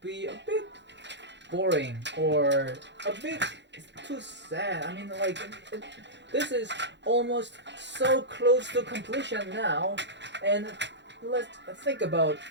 be a bit boring or a bit too sad. I mean, like this is almost so close to completion now, and let's think about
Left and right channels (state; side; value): late; left; 0.52 ms